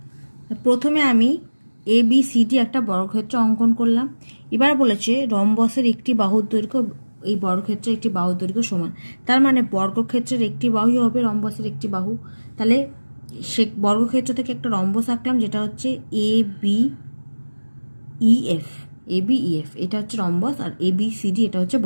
প্রথমে আমি ABCD একটা বর্গক্ষেত্র অঙ্কন করলাম। এবার বলেছে রম্বসের একটি বাহুর দৈর্ঘ্য এই বর্গক্ষেত্রের একটি বাহুর দৈর্ঘ্য সমান। তার মানে বর্গক্ষেত্রের একটি বাহুই হবে রম্বসের একটি বাহু। তাহলে সে বর্গক্ষেত্র থেকে একটা রম্বস আঁকলাম যেটা হচ্ছে ABEF। এটা হচ্ছে রম্বস, আর ABCD এটা হচ্ছে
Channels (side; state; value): both; inverted; correlation -1.00